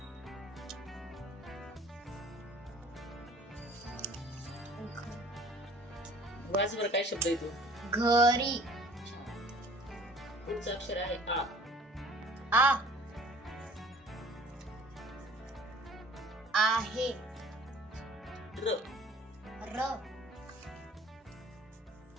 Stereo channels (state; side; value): normal; both; correlation 0.50